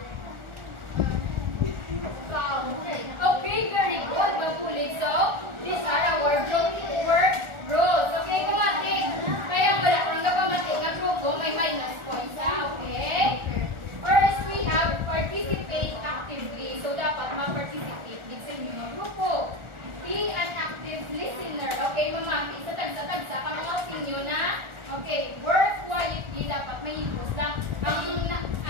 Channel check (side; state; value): left; late; 1.4 ms